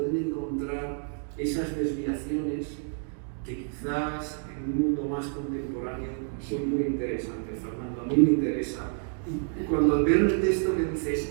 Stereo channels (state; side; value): silent; left; 59 dB below the other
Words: encontrar esas desviaciones que quizás en un mundo más contemporáneo son muy interesantes, Fernando. A mí me interesa. Y cuando veo el texto que